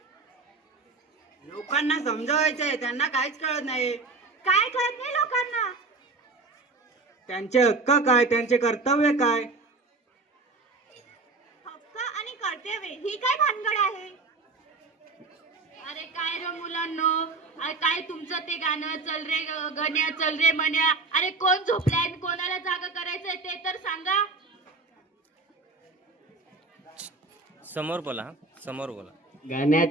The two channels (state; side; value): quieter; left; 3.7 dB